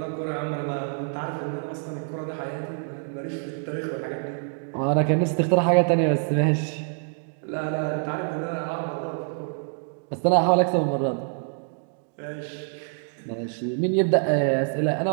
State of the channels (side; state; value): left; silent; 61 dB below the other